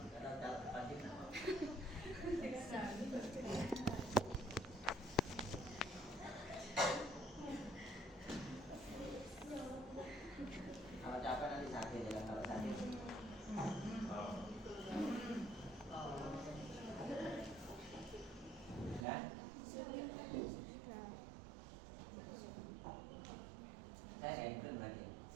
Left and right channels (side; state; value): left; drops out; at 19.1 s